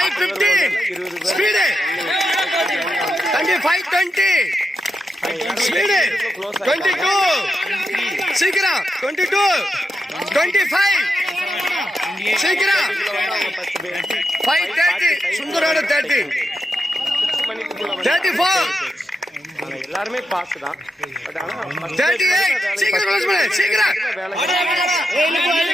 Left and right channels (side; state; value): both; normal; correlation 0.86